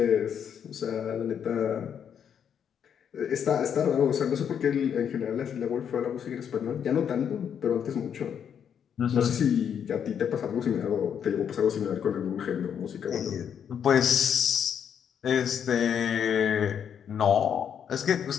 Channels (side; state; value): right; quieter; 8.2 dB